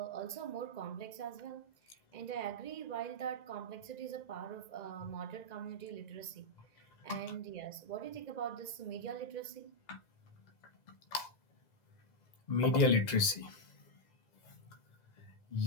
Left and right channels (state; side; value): late; right; 2.0 ms